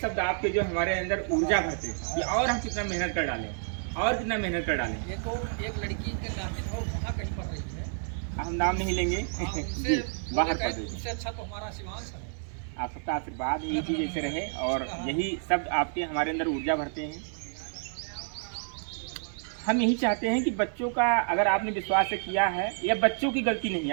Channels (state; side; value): silent; left; digital silence